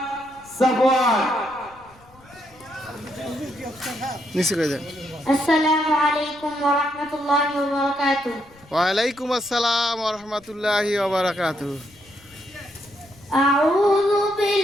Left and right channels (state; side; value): noise; left; rumble, 27 dB below the sound